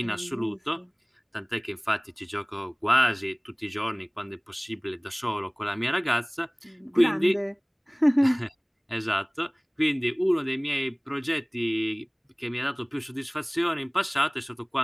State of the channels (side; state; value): both; identical; correlation 1.00